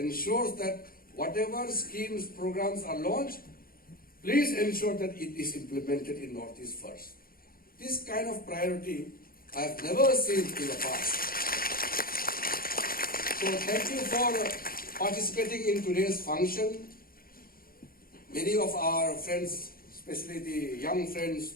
that whatever schemes, programs are launched, please ensure that it is implemented in Northeast first. This kind of priority I have never seen in the past. So thank you for participating in today's function. Many of our friends, especially the young friends,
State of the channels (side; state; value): right; late; 0.42 ms